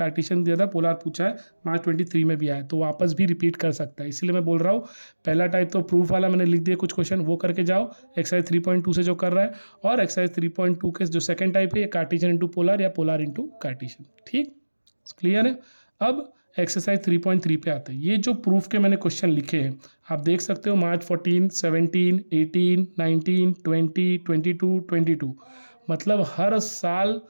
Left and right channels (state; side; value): inverted; both; correlation -1.00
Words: दिया था, पोलर पूछा है, मार्च 23 में भी आया है, तो वापस भी रिपीट कर सकता है। इसलिए मैं बोल रहा हूँ पहला टाइप तो प्रूफ वाला मैंने लिख दिया कुछ क्वेश्चन, वो करके जाओ एक्सरसाइज 3.2 से जो कर रहा है, और एक्सरसाइज 3.2 के जो सेकंड टाइप है, ये कार्टेशियन इंटू पोलर या पोलर इंटू कार्टेशियन। ठीक, क्लियर है? अब एक्सरसाइज 3.3 पे आते हैं। ये जो प्रूफ के मैंने क्वेश्चन लिखे हैं आप देख सकते हो, मार्च 14, 17, 18, 19, 20, 22, 22, मतलब हर साल